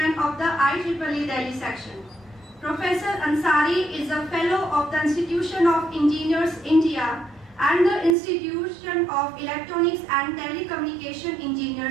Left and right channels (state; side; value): drops out; left; at 8.2 s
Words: of the IEEE Delhi section. Professor Ansari is a Fellow of the Institution of Engineers India and the Institution of Electronics and Telecommunication